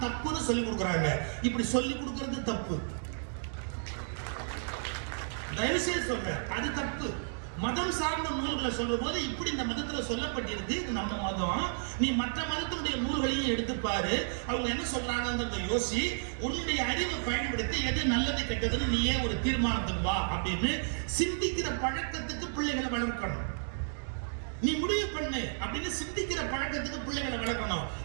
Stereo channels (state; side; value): silent; left; digital silence